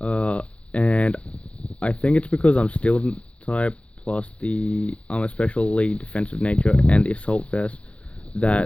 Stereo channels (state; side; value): late; right; 0.062 ms